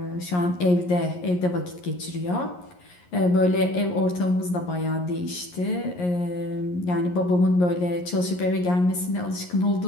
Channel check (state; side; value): late; right; 11 ms